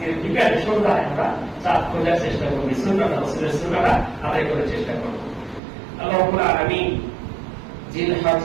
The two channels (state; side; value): drops out; left; at 5.6 s